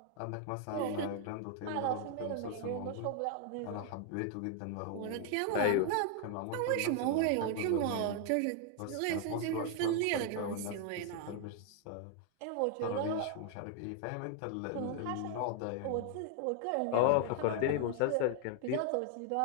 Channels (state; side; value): different; both; correlation 0.00